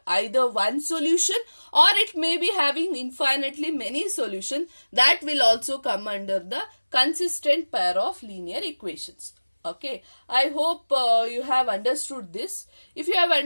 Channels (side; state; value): both; inverted; correlation -1.00